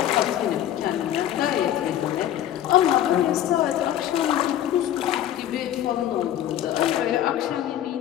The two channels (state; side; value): quieter; right; 11.5 dB